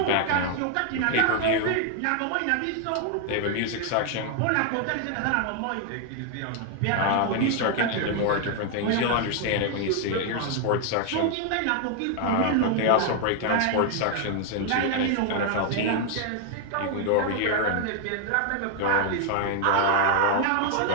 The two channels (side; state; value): both; different; correlation 0.00